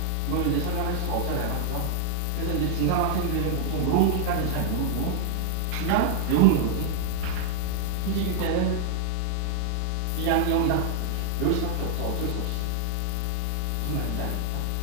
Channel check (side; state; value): both; different; correlation 0.00